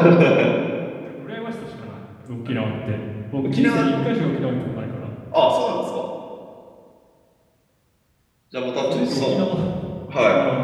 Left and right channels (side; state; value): both; identical; correlation 1.00